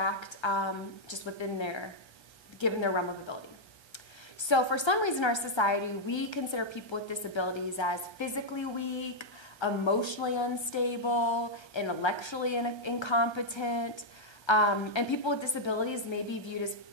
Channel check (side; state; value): right; late; 1.3 ms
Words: just given their realm of ability. So for some reason in our society, we consider people with disabilities as physically weak, emotionally unstable, intellectually incompetent, and people with disabilities may be viewed